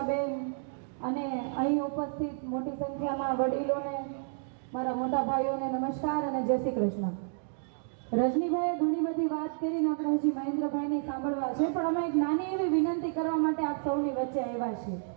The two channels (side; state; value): left; silent; digital silence